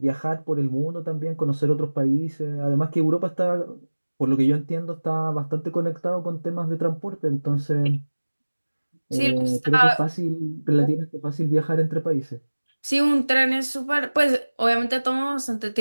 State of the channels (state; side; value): inverted; both; correlation -1.00